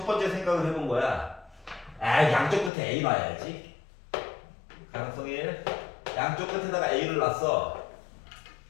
번째 생각을 해본 거야. 양쪽 끝에 A 놔야지. 가능성 1. 양쪽 끝에다가 A를 놨어.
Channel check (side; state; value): right; drops out; at 2.7 s